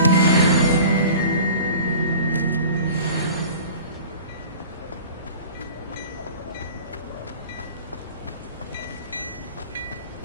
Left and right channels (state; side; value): inverted; both; correlation -0.42